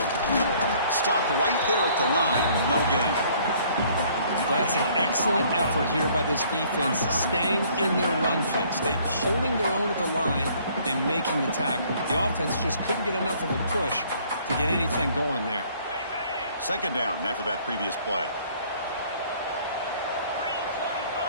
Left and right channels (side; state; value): both; inverted; correlation -0.59